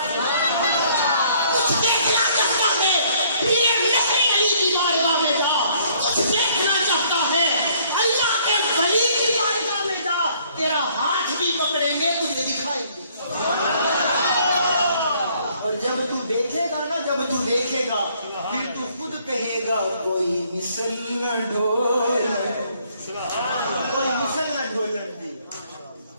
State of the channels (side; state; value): both; inverted; correlation -0.63